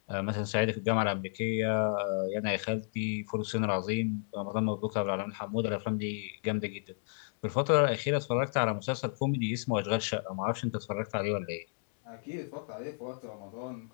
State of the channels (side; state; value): right; silent; digital silence